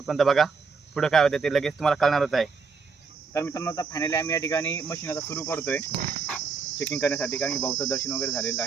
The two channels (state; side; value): quieter; left; 5.0 dB